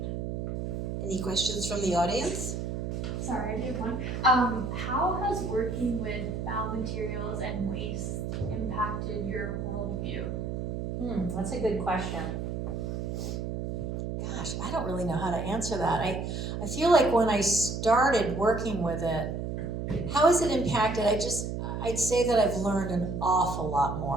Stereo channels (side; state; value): right; noise; hum, 3 dB below the sound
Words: Any questions from the audience? Sorry, I did one. How has working with found materials and waste impacted your worldview? That's a good question. Gosh, I don't really know how to answer that. I feel like when I started working with it, how has it impacted? I'd say that I've learned an awful lot